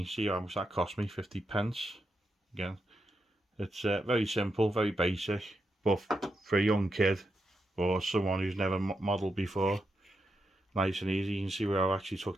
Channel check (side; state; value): both; normal; correlation 0.85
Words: see how much that cost me, 50p. Again, it's very simple, very basic, but for a young kid or someone who's never modelled before, nice and easy. You can see where I actually took